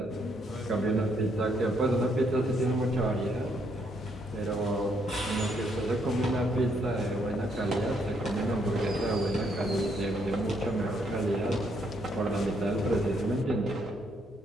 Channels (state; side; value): normal; both; correlation 0.73